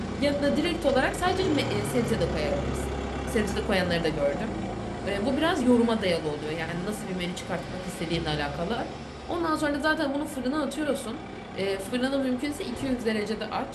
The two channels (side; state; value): both; identical; correlation 1.00